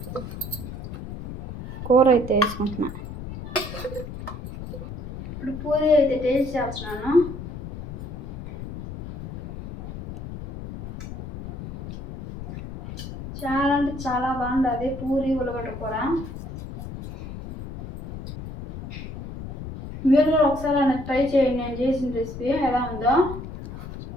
కూర అయితే వేసుకుంటున్నా. ఇప్పుడు పూరి అయితే టేస్ట్ చేస్తున్నాను. చాలా అంటే చాలా బాగుంటుంది పూరి ఉలగడ్డ కూర. మీరు కూడా ఒకసారి నాకు ట్రై చేయండి, నేను చేసిన రెసిపీ ఎలా ఉందో.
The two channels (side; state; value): left; noise; rumble, 10 dB below the sound